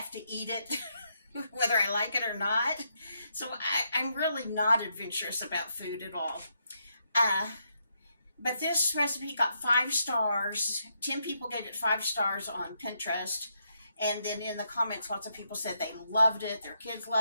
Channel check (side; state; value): both; inverted; correlation -0.79